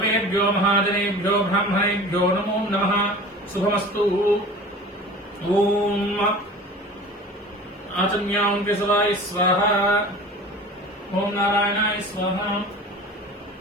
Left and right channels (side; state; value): both; normal; correlation 0.39